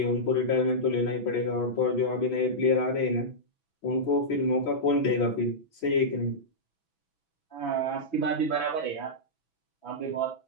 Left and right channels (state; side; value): late; right; 6.1 ms